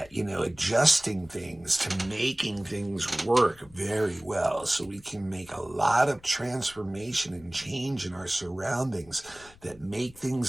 adjusting things to making things work very well. So we can make a lot of transformation and change in our surroundings that make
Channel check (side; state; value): left; noise; rumble, 24 dB below the sound